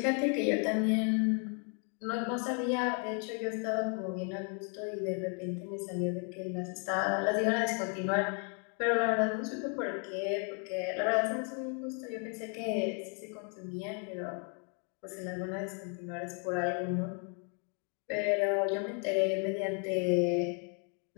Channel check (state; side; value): quieter; right; 39.8 dB